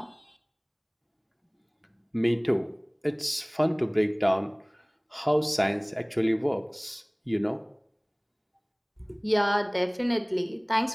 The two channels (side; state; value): both; identical; correlation 1.00